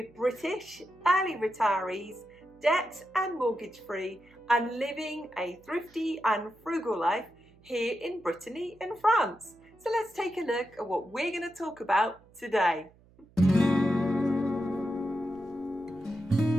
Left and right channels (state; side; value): noise; right; hum, 28 dB below the sound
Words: British, early retirees, debt and mortgage free, and living a thrifty and frugal life here in Brittany in France. So let's take a look at what we're going to talk about today.